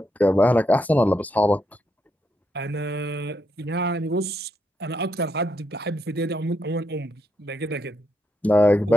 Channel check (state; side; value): normal; both; correlation 0.79